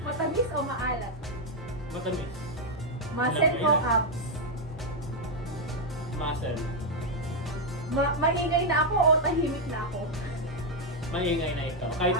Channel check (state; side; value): normal; both; correlation 0.01